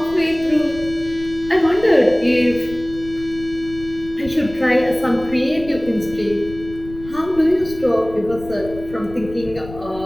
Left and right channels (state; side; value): noise; left; rumble, 15 dB below the sound